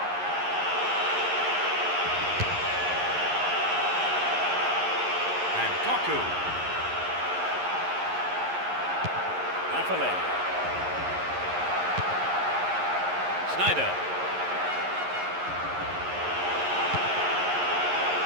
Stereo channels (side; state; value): left; late; 11 ms